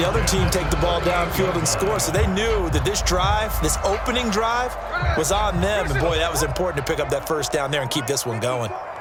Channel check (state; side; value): identical; both; correlation 1.00